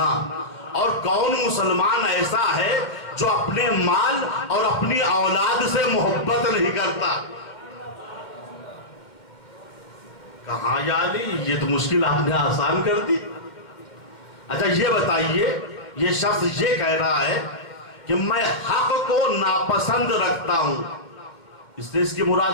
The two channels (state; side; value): late; right; 2.2 ms